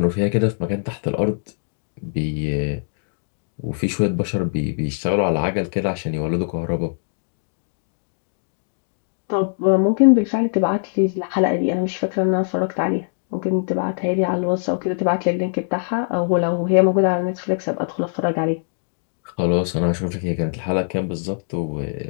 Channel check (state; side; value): silent; right; digital silence